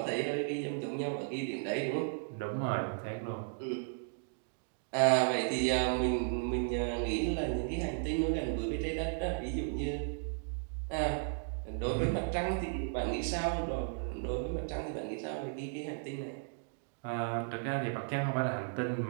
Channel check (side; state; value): left; silent; digital silence